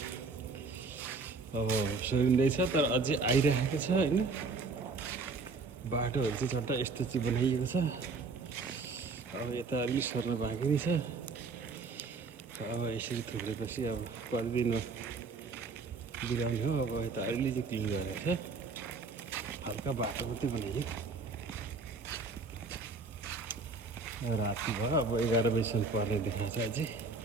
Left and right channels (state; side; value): quieter; left; 4.2 dB